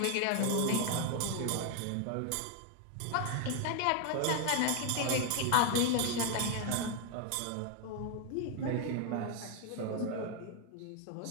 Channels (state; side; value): different; both; correlation 0.00